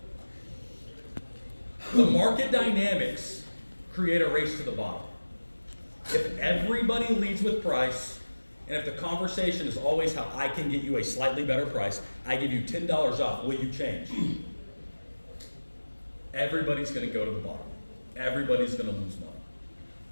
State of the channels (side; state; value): both; inverted; correlation -1.00